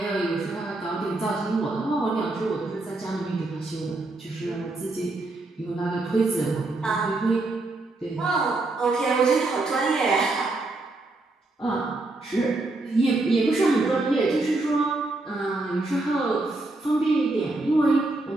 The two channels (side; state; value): left; quieter; 3.0 dB